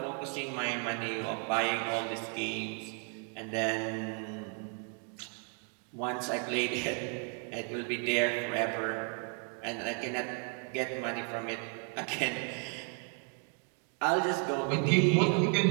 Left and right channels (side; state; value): left; quieter; 39.9 dB